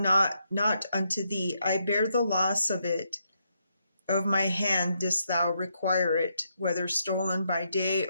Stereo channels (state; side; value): inverted; both; correlation -0.79